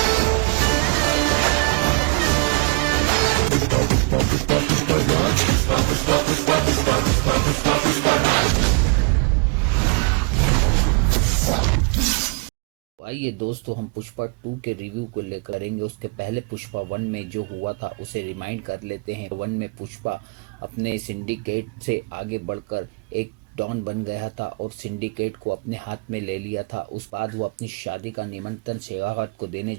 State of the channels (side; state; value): left; quieter; 33.0 dB